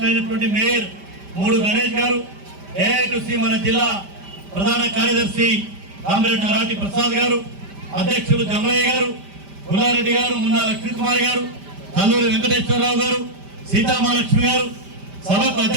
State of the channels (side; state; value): left; late; 5.1 ms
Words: మేయర్ మూడు గణేష్ గారు, ఏఐటీసీ మన జిల్లా ప్రధాన కార్యదర్శి కామ్రేడ్ నరాటి ప్రసాద్ గారు, అధ్యక్షులు జమలయ్య గారు, గుల్లారెడ్డి గారు, మున్నా లక్ష్మీకుమారి గారు, కల్లూరి వెంకటేశ్వరరావు గారు, సీతామహాలక్ష్మి గారు, సభకు